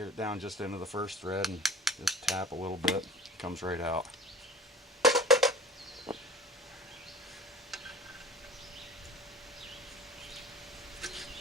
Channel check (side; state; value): both; normal; correlation 0.40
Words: it down just into the first thread, and just tap a little bit. It comes right out.